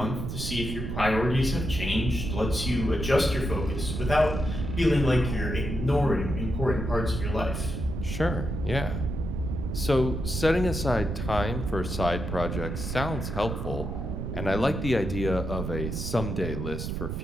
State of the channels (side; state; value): right; noise; rumble, 4 dB below the sound